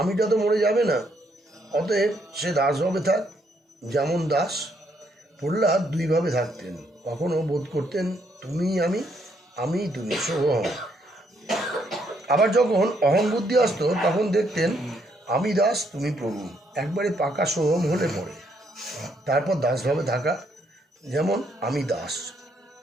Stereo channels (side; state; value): both; normal; correlation 0.72